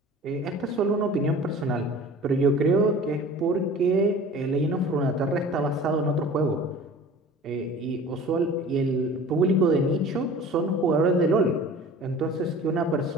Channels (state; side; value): normal; both; correlation 0.43